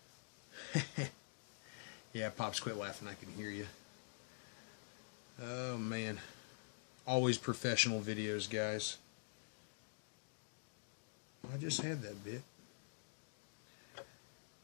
Yeah, Pops, quit laughing. I can hear you. Oh, man. Always professional videos, guys. I just had that bit.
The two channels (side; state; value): right; silent; digital silence